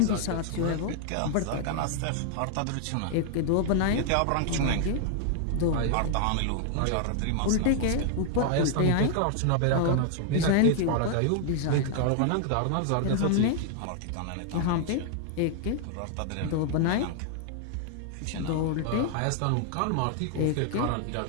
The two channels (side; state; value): both; different; correlation 0.00